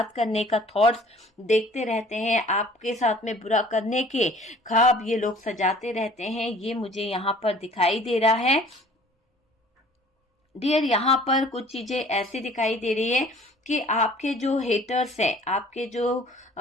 करने का थॉट्स देखते रहते हैं, आपके साथ में बुरा करने के ख्वाब ये लोग सजाते रहते हैं। ये मुझे यहाँ पर दिखाई दे रहा है डियर। यहाँ पर कुछ चीजें ऐसी दिखाई दे रही है कि आपके जो हेटर्स हैं, आपके जो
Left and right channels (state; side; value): normal; both; correlation 0.51